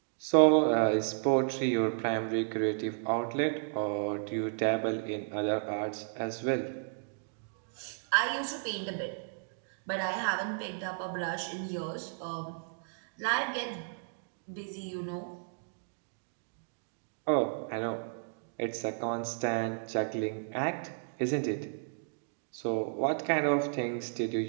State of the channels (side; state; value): left; silent; digital silence